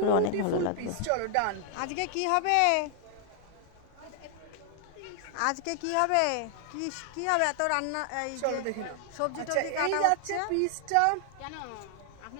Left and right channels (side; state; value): both; different; correlation 0.00